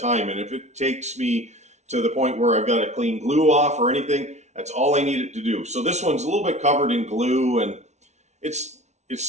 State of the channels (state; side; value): late; left; 0.32 ms